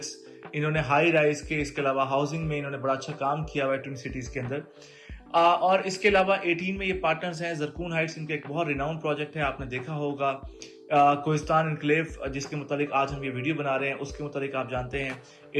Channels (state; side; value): identical; both; correlation 1.00